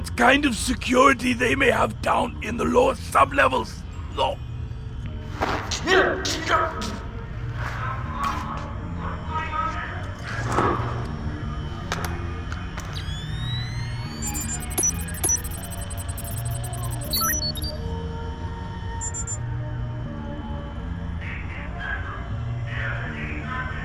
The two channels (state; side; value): identical; both; correlation 1.00